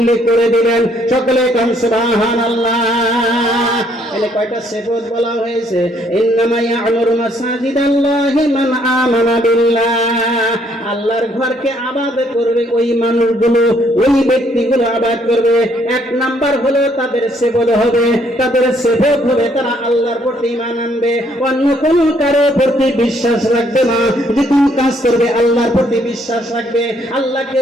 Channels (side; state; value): both; normal; correlation 0.67